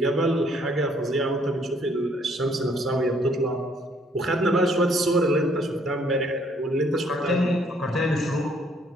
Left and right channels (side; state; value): both; normal; correlation 0.65